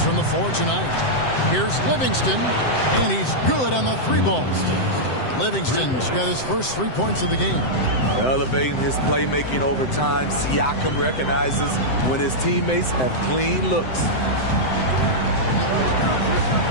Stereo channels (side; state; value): right; late; 7.8 ms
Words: from the floor tonight. Here's Livingston, and he's good on the 3 balls. Livingston's got his first 3 points of the game. Elevating his playmaking over time, Siakam recognizes when his teammates have clean looks.